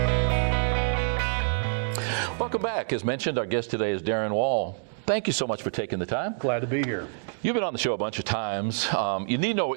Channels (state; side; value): silent; left; digital silence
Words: Welcome back. As mentioned, our guest today is Darrin Wall. Thank you so much for taking the time. Glad to be here. You've been on the show a bunch of times. You need no